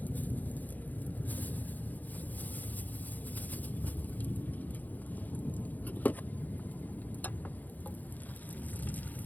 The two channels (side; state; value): right; late; 0.082 ms